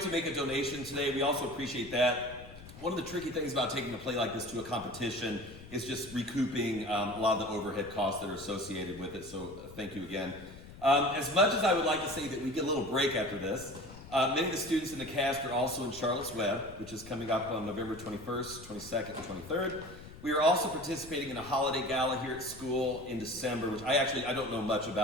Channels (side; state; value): left; noise; rumble, 16 dB below the sound